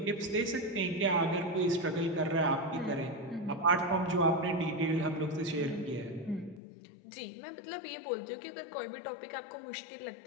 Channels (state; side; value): drops out; right; at 6.6 s